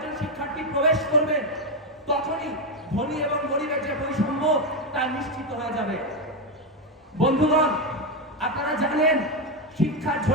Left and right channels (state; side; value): normal; both; correlation 0.07